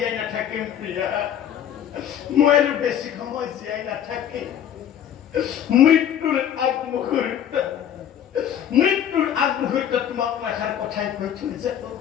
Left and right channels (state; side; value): quieter; right; 9.8 dB